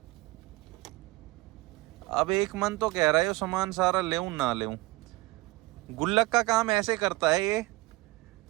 अब एक मन तो कह रहा है ये सामान सारा लेऊं ना लेऊं। गुल्लक का काम ऐसे करता है ये,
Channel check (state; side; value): quieter; left; 21.1 dB